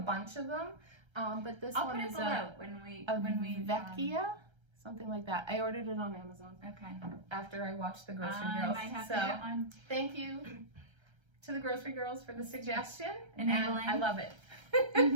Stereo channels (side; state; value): left; late; 1.3 ms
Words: bunch of them, but this I'll one put it is below when we Vecchia, something like that. I ordered it on Amazon okay. after I watched the Grocery I Girls. might have So to get one. thank you to the Grocery Girls for the suggestion. Enabling. And I love it.